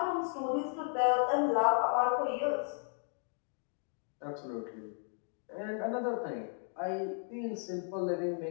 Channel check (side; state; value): right; silent; 55 dB below the other